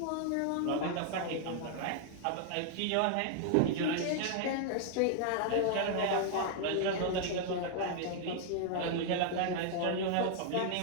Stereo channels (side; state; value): both; different; correlation 0.00